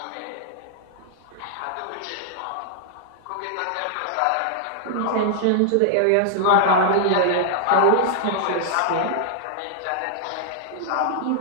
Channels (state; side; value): different; both; correlation -0.01